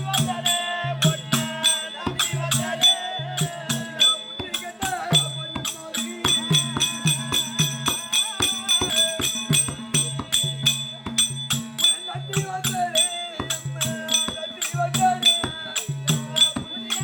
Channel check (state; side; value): identical; both; correlation 1.00